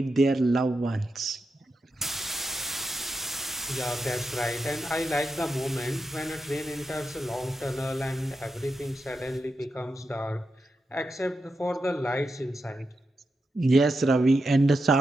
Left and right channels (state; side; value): normal; both; correlation 0.87